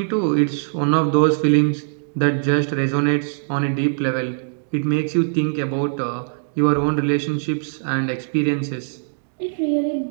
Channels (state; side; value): silent; left; digital silence